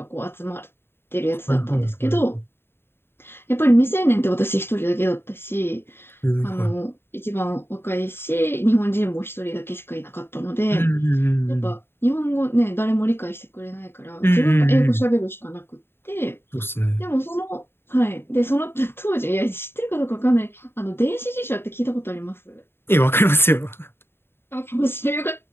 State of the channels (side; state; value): right; late; 0.11 ms